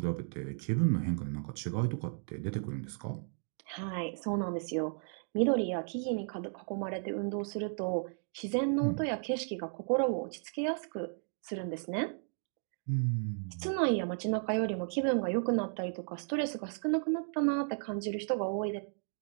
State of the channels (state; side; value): silent; left; 55 dB below the other